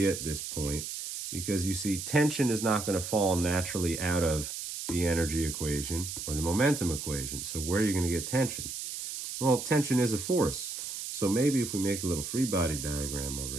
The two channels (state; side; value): noise; right; hiss, 6 dB below the sound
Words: at this point, because you see tension is not going to fall naturally out of the energy equation or the momentum equation. So where are you going to get tension? Well, tension is a force. So maybe if we make a little free body diagram over